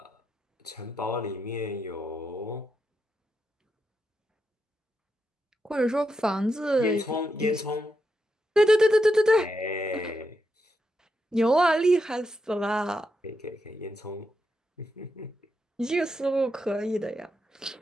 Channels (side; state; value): both; normal; correlation 0.84